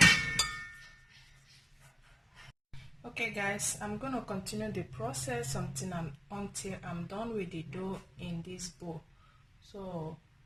Okay guys, I'm going to continue the process until I'm done with the dough in this bowl. So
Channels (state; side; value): identical; both; correlation 1.00